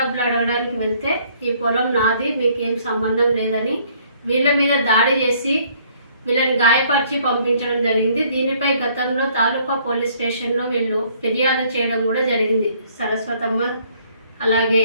అడగడానికి వెళ్తే ఈ పొలం నాది, మీకేం సంబంధం లేదని వీళ్ళ మీద దాడి చేసి వీళ్ళని గాయపరిచి పంపించడం జరిగింది. దీనిపై గతంలో తాలూకా పోలీస్ స్టేషన్లో వీళ్ళు ఫిర్యాదు చేయడం కూడా జరిగింది, సరస్వతమ్మ అలాగే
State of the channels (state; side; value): inverted; both; correlation -0.62